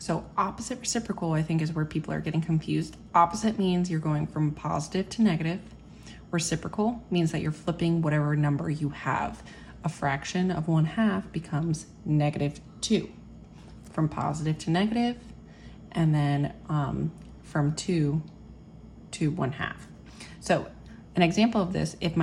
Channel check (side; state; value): both; identical; correlation 1.00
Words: opposite reciprocal, I think, is where people are getting confused. Opposite means you're going from positive to negative. Reciprocal means that you're flipping whatever number you have. A fraction of 1/2 becomes -2, from positive to negative, and then from 2 to 1/2. So an example of this, if